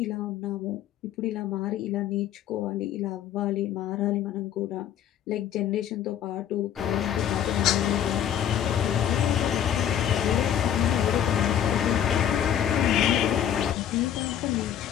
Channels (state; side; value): quieter; right; 10.0 dB